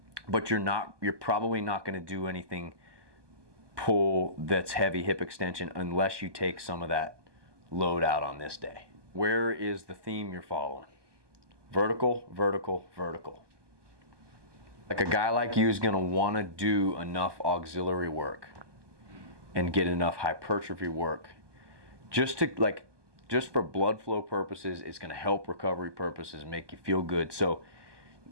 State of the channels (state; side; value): late; left; 1.2 ms